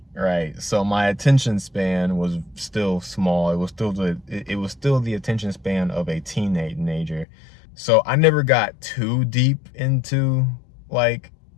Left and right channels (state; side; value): drops out; right; at 7.2 s